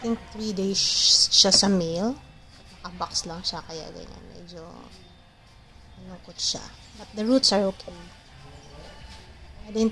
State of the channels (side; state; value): both; identical; correlation 1.00